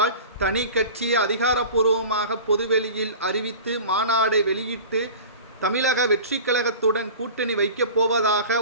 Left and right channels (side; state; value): both; inverted; correlation -0.38